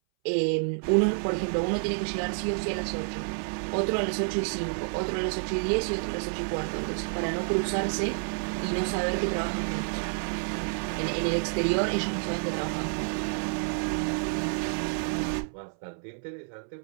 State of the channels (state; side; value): silent; left; 59 dB below the other